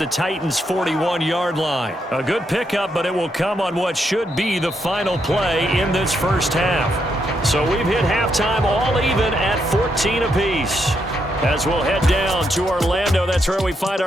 Titans' 41-yard line. A good pickup, but it will come on what should be the final play in this first half. So we've hit halftime all even at 14 apiece. As we'll head down to Orlando, that's where we find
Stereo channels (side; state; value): both; normal; correlation 0.79